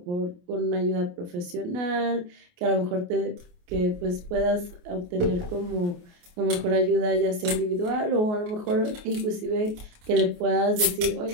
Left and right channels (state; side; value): late; left; 28 ms